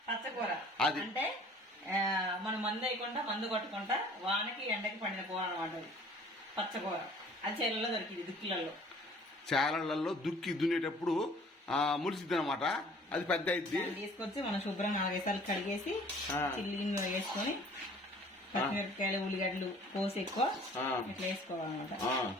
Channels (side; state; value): both; normal; correlation 0.51